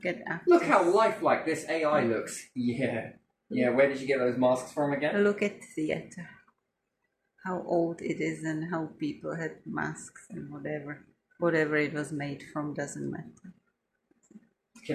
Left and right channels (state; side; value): identical; both; correlation 1.00